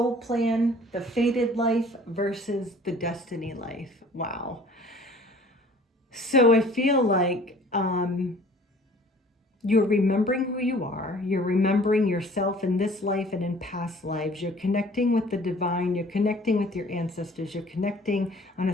plan, the fated life versus the destiny life. Wow. So I feel like you're remembering who you are. You're remembering yourself in this life and in past lives. You're connecting with the divine. You're connecting with your ancestors. You're connecting on a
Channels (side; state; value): both; normal; correlation 0.51